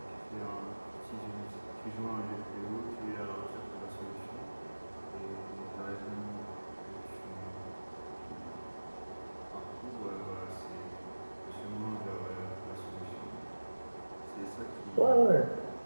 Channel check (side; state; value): both; inverted; correlation -1.00